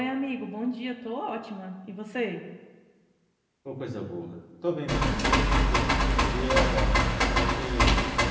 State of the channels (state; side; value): identical; both; correlation 1.00